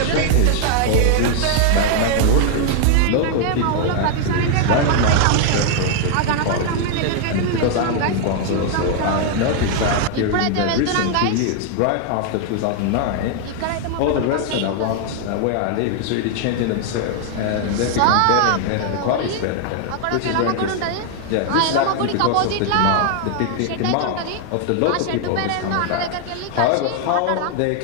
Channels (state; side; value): different; both; correlation 0.00